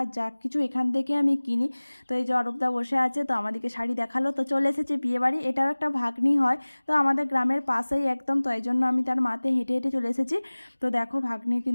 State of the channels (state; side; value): inverted; both; correlation -1.00